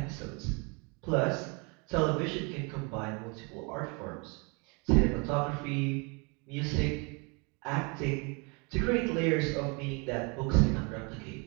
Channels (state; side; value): quieter; left; 31.5 dB